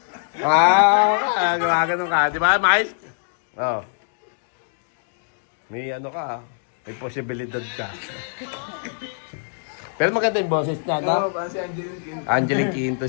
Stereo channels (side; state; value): right; silent; digital silence